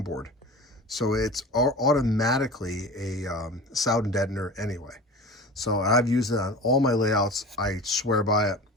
so it's automatically a sound deadener anyway. So I've used it on all my layouts. I swear by it.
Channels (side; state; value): both; normal; correlation 0.36